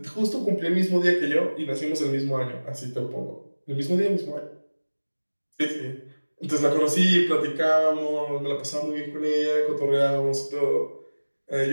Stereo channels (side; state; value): both; inverted; correlation -1.00